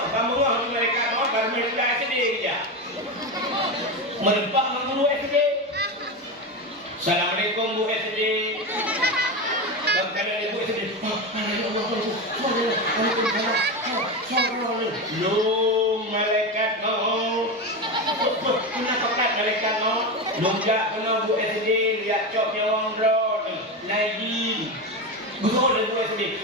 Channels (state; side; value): normal; both; correlation 0.18